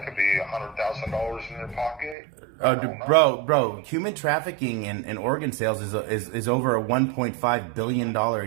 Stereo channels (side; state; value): left; drops out; at 2.1 s